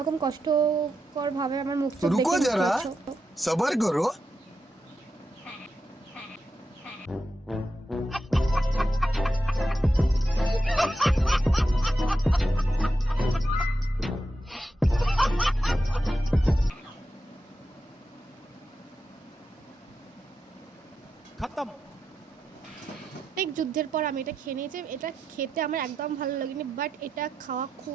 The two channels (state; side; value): normal; both; correlation 0.87